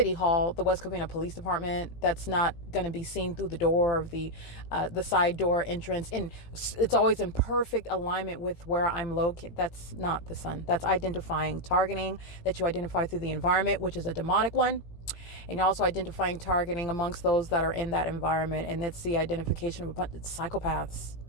Hall, the West Covina Police Department. That's not going to be seen through the door of the side door entrance. And it's always in perfect alignment with where I'm located. That's not the sun. That's identifying, targeting that you identify through the environment, which is a demonic one. And you're also identifying targeting amongst those that are in that environment. And it's the identification of a bunch of psychopaths.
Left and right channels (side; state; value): right; late; 18 ms